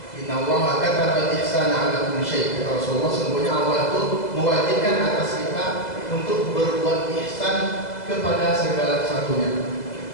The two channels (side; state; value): right; late; 2.0 ms